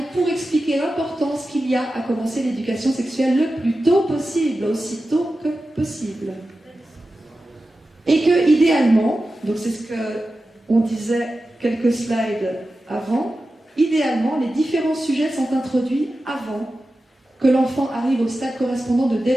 pour expliquer l'importance qu'il y a à commencer l'éducation sexuelle le plus tôt possible, aussi tôt que possible. Et que, idéalement, donc c'est ce qu'on disait quelques slides avant, idéalement, les différents sujets sont introduits avant que l'enfant arrive au stade correspondant de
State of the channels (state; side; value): normal; both; correlation 0.93